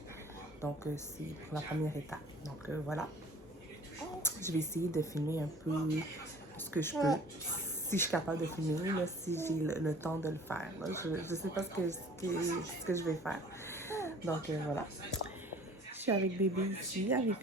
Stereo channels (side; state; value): both; normal; correlation 0.49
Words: Donc, c'est la première étape. Donc, voilà. Je vais essayer de filmer un peu ce que je peux. Si je suis capable de filmer, là, si j'ai le temps de le faire. Là. Je ne sais pas ce que je vais faire. Donc, voilà. Je suis avec bébé ici, avec